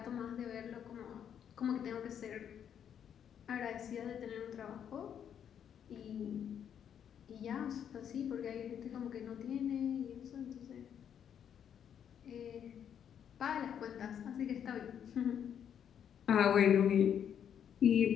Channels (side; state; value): right; quieter; 8.7 dB